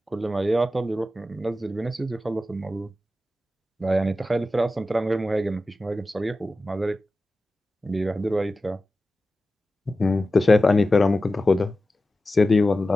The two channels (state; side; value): normal; both; correlation 0.94